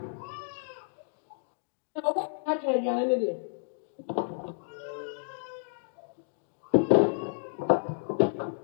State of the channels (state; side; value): silent; right; digital silence